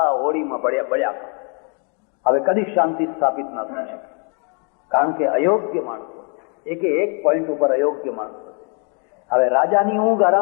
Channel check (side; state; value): right; quieter; 38.4 dB